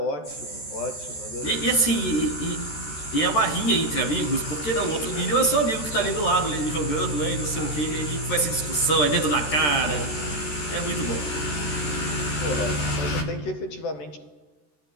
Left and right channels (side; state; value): right; late; 13 ms